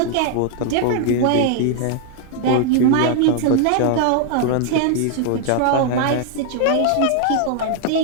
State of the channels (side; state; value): both; different; correlation 0.00